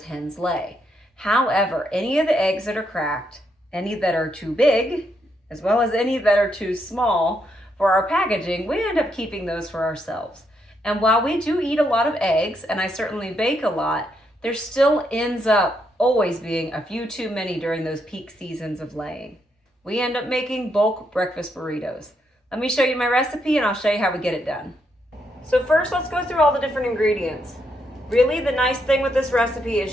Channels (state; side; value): normal; both; correlation 0.78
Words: hens lay. However, any of the eggs that are cracked, any that are too big, as well as any that are too small for our packaging, we end up keeping those for ourselves. And while we do eat a lot of eggs, and I certainly bake a lot, there still ends up always being a few too many during those peak seasons of laying. We end up making bulk breakfast burritos. Let me show you my recipe and I'll show you how we get it done. So first, let's go through all the different ingredients. Really, the nice thing with this recipe